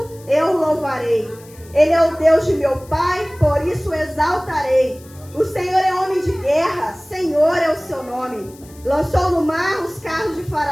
eu o louvarei. Ele é o Deus de meu pai, por isso o exaltarei. O Senhor é homem de guerra, Senhor é o seu nome. Lançou no mar os carros de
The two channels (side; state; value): left; noise; hiss, 24 dB below the sound